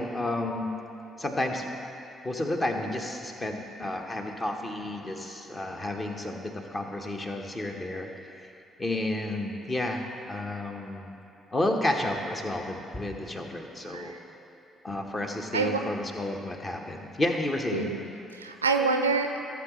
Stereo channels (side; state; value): both; normal; correlation 0.51